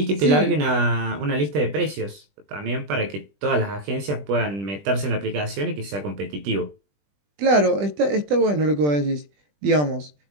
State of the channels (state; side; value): late; left; 20 ms